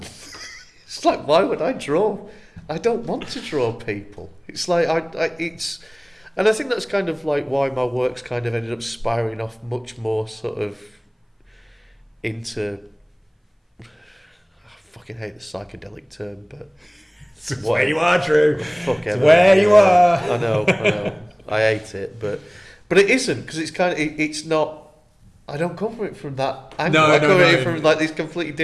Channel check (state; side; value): identical; both; correlation 1.00